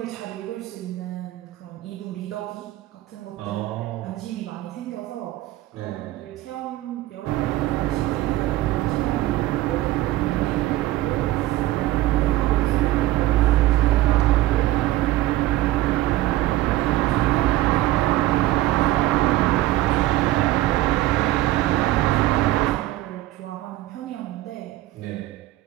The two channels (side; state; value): left; quieter; 16.2 dB